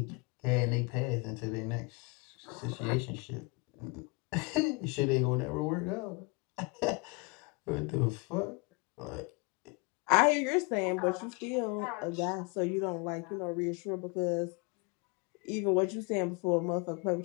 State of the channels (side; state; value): right; quieter; 29.5 dB